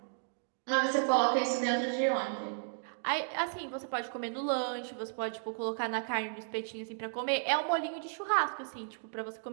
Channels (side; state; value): left; silent; digital silence